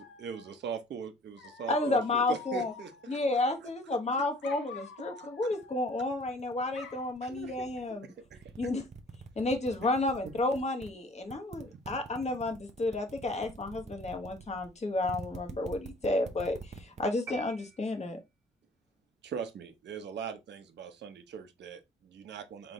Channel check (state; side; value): normal; both; correlation 0.52